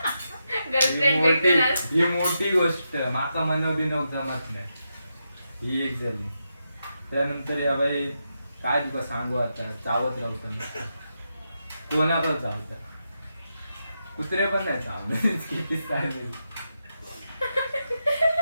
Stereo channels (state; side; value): inverted; both; correlation -0.86